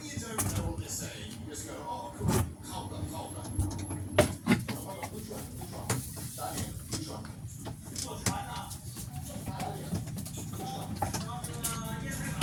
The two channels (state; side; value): identical; both; correlation 1.00